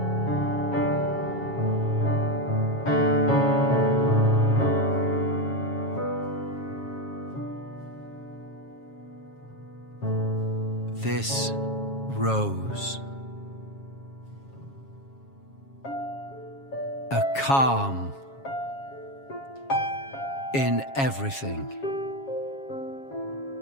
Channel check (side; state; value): right; late; 7.3 ms